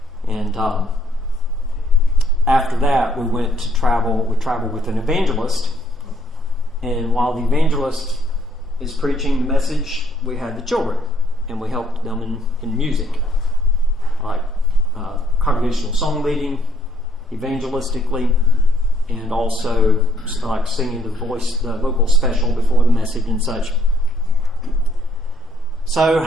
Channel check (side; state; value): both; normal; correlation 0.66